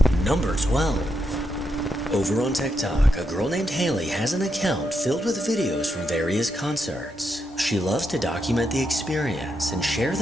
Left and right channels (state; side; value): normal; both; correlation 0.82